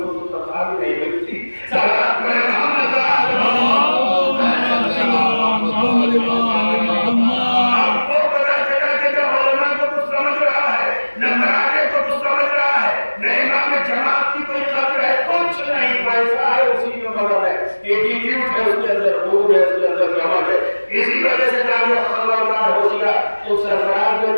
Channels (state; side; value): inverted; both; correlation -1.00